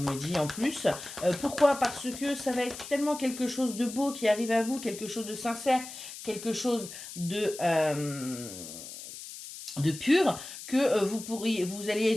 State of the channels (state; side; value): noise; left; hiss, 12 dB below the sound